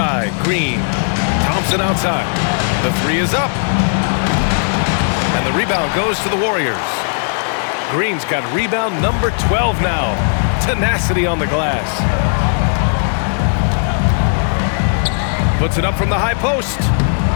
Green. Thompson outside. The 3 is up. And the rebound goes to the Warriors. Green's got rebound number 12 now. Tenacity on the glass. Puts it up from the high post.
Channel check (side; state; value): right; silent; 65 dB below the other